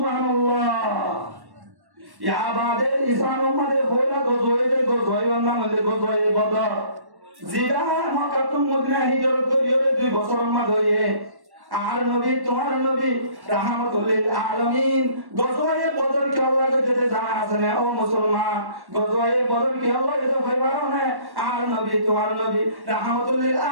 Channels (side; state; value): left; late; 1.1 ms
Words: ইয়া বাদে ইসলাম উম্মতে বলা গজওয়ে বান্দা মধ্যে গজওয়ে বদর জিরা মক্কা টু মদিনা হিজরত করিয়ে 2 বছর মধ্যে আর নবী তোমার নবী রাহমাতুল লিল আলামিন গজওয়ে বদর কি আল্লাহ যেতে জানা আছে না ও মুসলমান গজওয়ে বদর কি আল্লাহ যেতে ভাইবারো না আর নবী তোমার নবী রাহমাতুল লিল